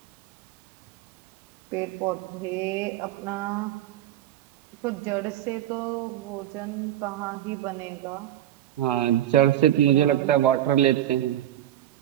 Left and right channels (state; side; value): quieter; left; 12.3 dB